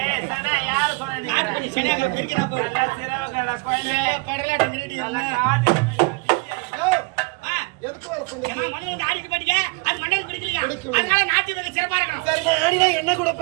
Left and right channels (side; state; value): left; quieter; 29.1 dB